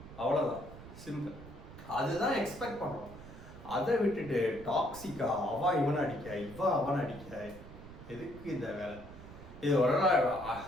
அவ்வளோதான், சிம்பிள். அதுதான் எக்ஸ்பெக்ட் பண்ணுறோம். அதை விட்டுட்டு டாக்ஸிக்கா அவன் இவனை அடிக்க, இவன் அவனை அடிக்க, எதுக்கு இந்த வேலை? இது ஒரு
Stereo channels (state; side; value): noise; right; rumble, 15 dB below the sound